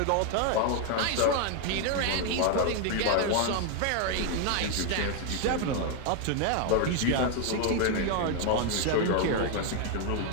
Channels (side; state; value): both; different; correlation 0.00